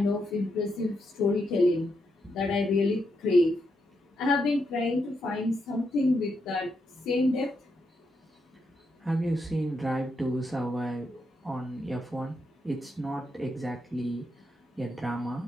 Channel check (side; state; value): both; normal; correlation 0.81